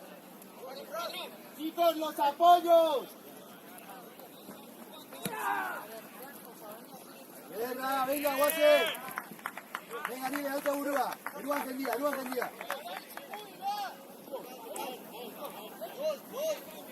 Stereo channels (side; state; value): both; identical; correlation 1.00